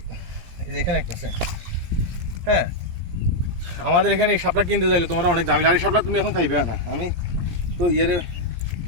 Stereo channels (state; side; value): late; left; 17 ms